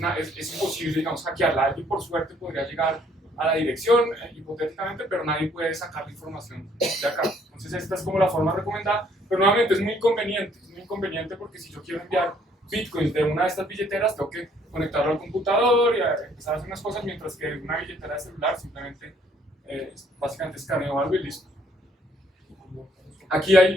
es imposible, digamos, hackearla. Alguien por suerte podría llegar a la dirección, hipotéticamente, pero nadie puede sacar la información de acá. Entonces esta es como la forma recomendada, pero nuevamente es muy inconveniente porque si yo quiero enviar Bitcoins de una de estas billeteras, tengo que conectarlo al computador y empezar a hacer unas cosas, mientras que una billetera de celular simplemente básicamente escaneo algo y listo. Aquí hay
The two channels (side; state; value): both; normal; correlation 0.64